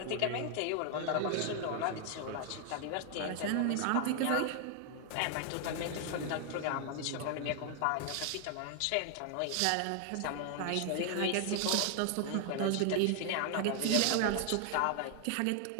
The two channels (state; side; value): different; both; correlation 0.00